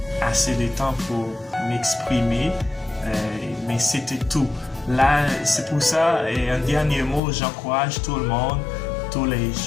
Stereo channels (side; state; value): right; drops out; at 7.2 s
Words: assez de temps pour m'exprimer, mais c'était tout. Là, c'est pour ça, et un dernier mot, j'encourage tout le monde, tous les